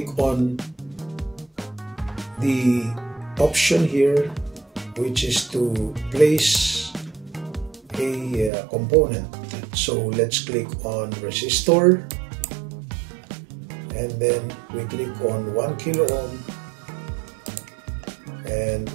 on the option here, which is to place a component. So let's click on resistor. And then we click on 1 kilo ohm and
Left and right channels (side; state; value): left; drops out; at 8.5 s